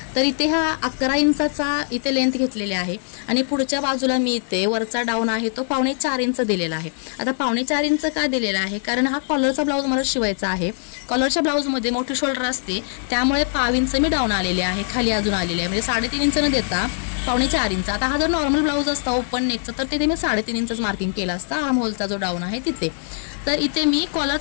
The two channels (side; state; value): right; silent; digital silence